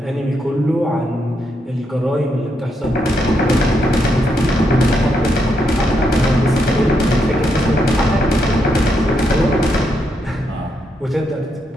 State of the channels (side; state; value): both; normal; correlation 0.80